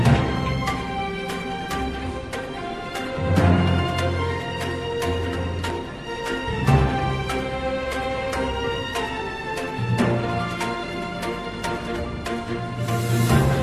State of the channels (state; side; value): identical; both; correlation 1.00